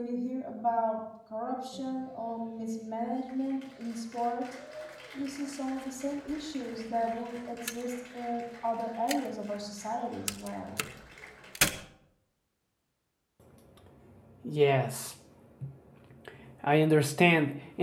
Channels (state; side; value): identical; both; correlation 1.00